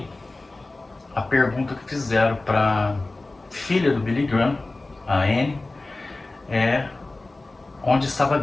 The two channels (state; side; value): quieter; right; 3.1 dB